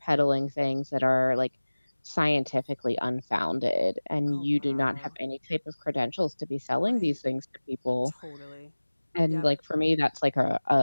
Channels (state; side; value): inverted; both; correlation -1.00